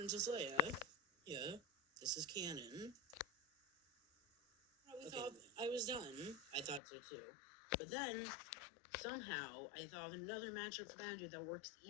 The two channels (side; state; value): right; drops out; at 6.8 s